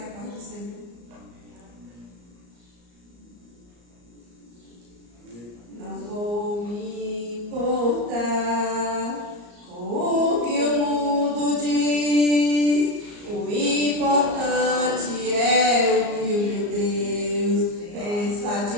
a paz do Senhor. Não vou me importar com o que o mundo diz. O importante é o que o Deus pensa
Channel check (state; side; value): late; left; 34 ms